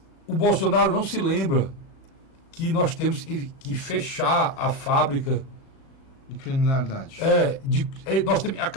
o Bolsonaro não se lembra que nós temos que fechar a fábrica de criminalidade. Nós temos que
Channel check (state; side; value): late; right; 37 ms